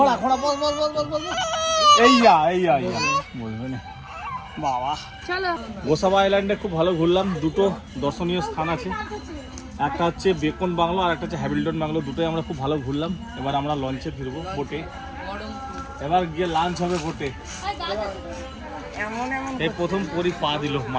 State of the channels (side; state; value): both; identical; correlation 1.00